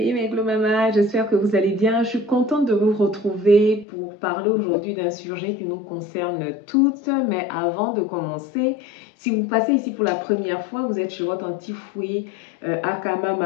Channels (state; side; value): drops out; right; at 3.9 s